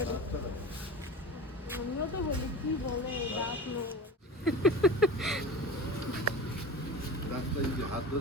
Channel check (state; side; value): normal; both; correlation 0.32